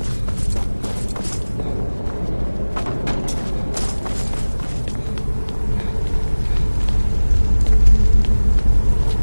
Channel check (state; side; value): inverted; both; correlation -1.00